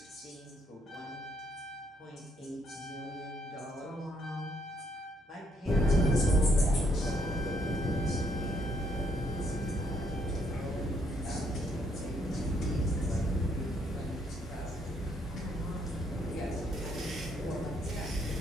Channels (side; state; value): both; normal; correlation 0.72